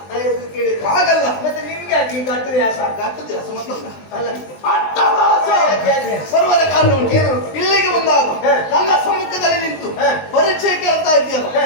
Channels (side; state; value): right; late; 20 ms